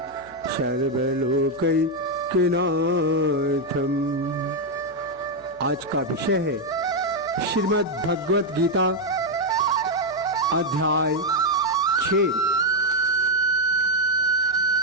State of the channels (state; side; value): noise; left; hum, 27 dB below the sound